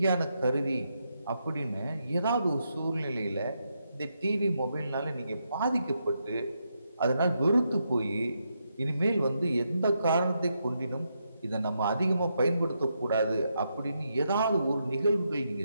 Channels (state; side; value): inverted; both; correlation -0.82